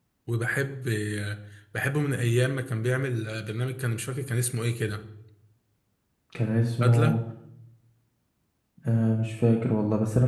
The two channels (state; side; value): identical; both; correlation 1.00